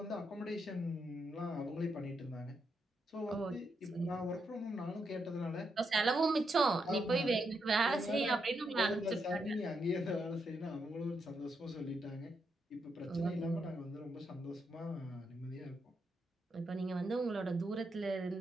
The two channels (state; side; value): normal; both; correlation 0.81